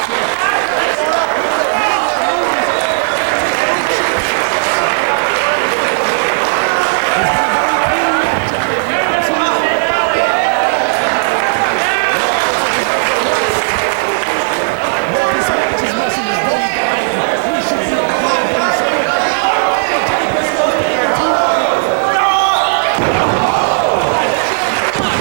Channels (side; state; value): left; silent; digital silence